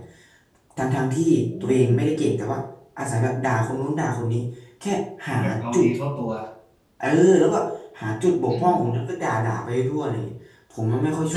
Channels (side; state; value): both; identical; correlation 1.00